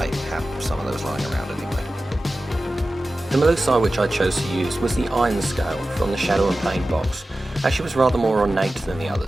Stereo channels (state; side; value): normal; both; correlation 0.95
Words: have some of those lying around anyway. The Melusai which I chose to use was the Ironscale from the Shadow and Pain box, as she was rather more ornate than the